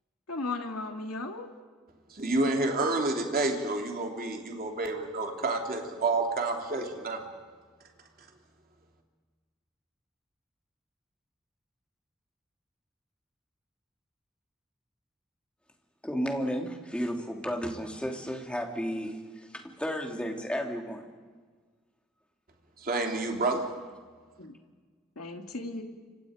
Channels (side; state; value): both; normal; correlation 0.38